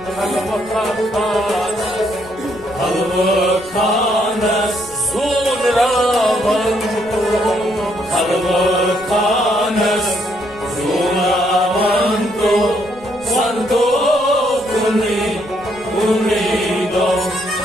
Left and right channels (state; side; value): noise; right; rumble, 23 dB below the sound